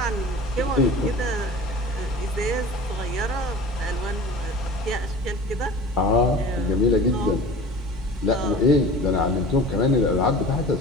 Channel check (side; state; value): both; normal; correlation 0.39